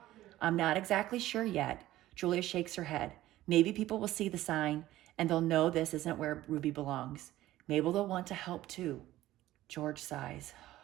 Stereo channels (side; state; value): left; quieter; 15.2 dB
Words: I'm not exactly sure yet. Julia shakes her head. Maybe people will see the sign and they'll know this isn't where Ruby belongs. Maybe they'll want to help too. George sighs.